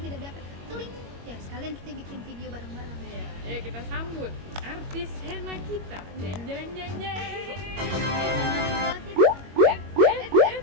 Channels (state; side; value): late; left; 21 ms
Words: tidak diapa, teling ya, sekalian kita bikin video bareng-bareng. Iya, ya kita sambut artis henna kita. Jeng jeng jeng jeng.